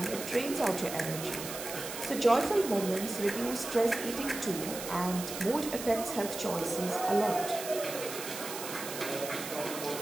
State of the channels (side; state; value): right; noise; hiss, 8 dB below the sound